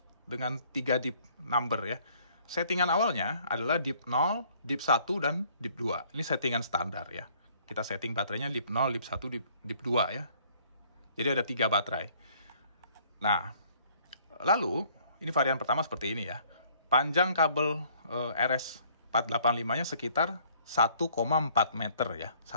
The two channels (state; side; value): inverted; both; correlation -0.60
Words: dengan 3 DIP number ya. Settingan awalnya adalah DIP 0, DIP 1, dan DIP 2. Ini settingan standar ya. Kita setting baterainya DIP 0, DIP 1, DIP 2 ya. Jadi ada 3 baterai. Nah, lalu ini varian pertama seperti ini ya. Panjang kabel RS485-nya sekitar 1,4 meter ya.